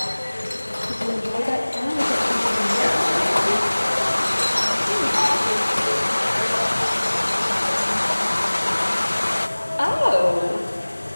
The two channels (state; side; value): inverted; both; correlation -1.00